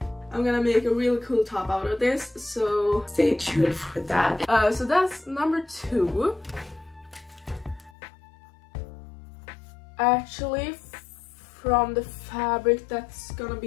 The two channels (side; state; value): right; drops out; at 7.9 s